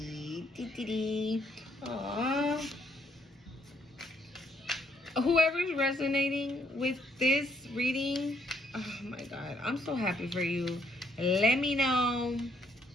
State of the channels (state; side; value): normal; both; correlation 0.70